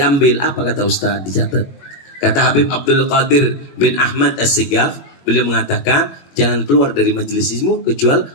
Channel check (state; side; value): late; right; 21 ms